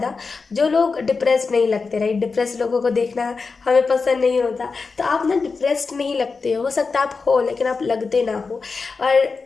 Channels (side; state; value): right; quieter; 4.5 dB